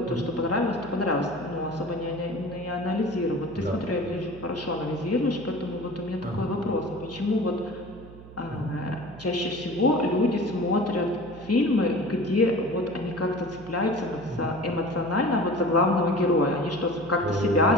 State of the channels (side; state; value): right; noise; hum, 17 dB below the sound